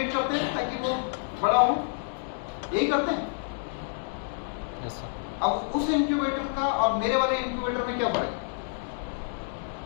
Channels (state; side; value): silent; right; digital silence